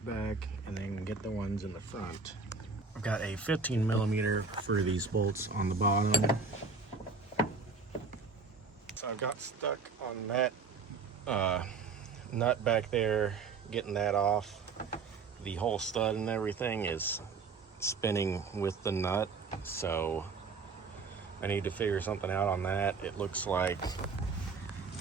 back and then get the ones in the front. I've got a 15mm for these bolts on the bottom. So I've got stuck on that nut back there, getting that off. The whole stud and everything is spinning with the nut, so I need to figure something out on that. It looks like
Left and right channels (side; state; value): left; quieter; 4.6 dB